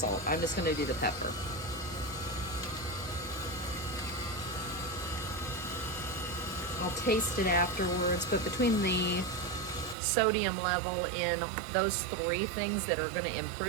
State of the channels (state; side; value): drops out; left; at 10.0 s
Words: I'm just going to do the pepper. I'll taste it afterwards, but between the sodium level in those 3 things that are going to